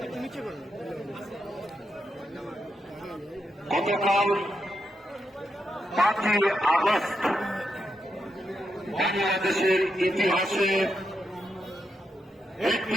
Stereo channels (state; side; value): normal; both; correlation 0.83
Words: গতকাল 5ই আগস্ট বাংলাদেশের ইতিহাসে একটি